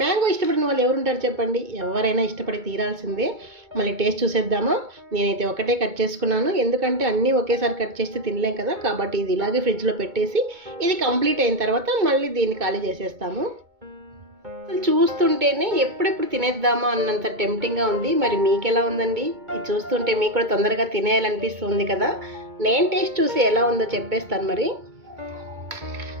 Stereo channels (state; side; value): late; left; 2.2 ms